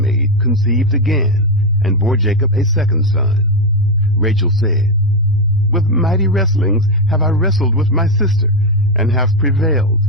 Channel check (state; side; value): normal; both; correlation 0.07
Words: conceived again, and bore Jacob a second son. Rachel said, With mighty wrestlings have I wrestled with my sister, and have prevailed.